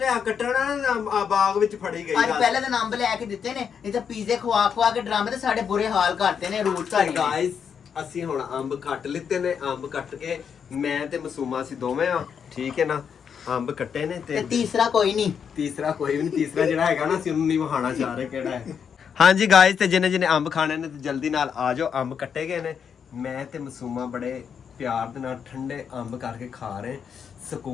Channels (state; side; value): quieter; right; 7.2 dB